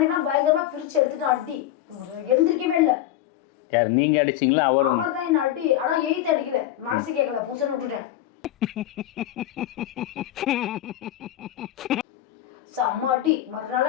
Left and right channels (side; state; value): right; quieter; 13.0 dB